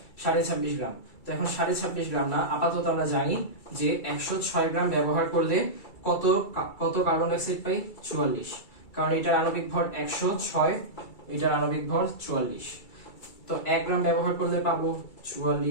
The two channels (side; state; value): right; late; 2.3 ms